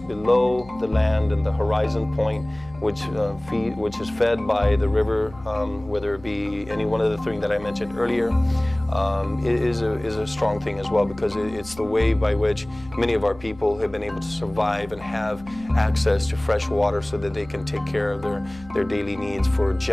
below the land and the horizon point, which is fed by the river, whether it be any one of the three that I mentioned earlier, is a strong thing as well, because it's the way by which many of our people have been able to survive and have access to fresh water so that they can take care of their daily needs for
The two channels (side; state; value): left; noise; hum, 20 dB below the sound